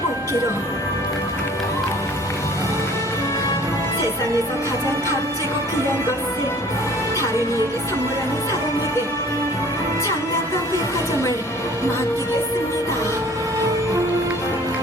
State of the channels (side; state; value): both; normal; correlation 0.51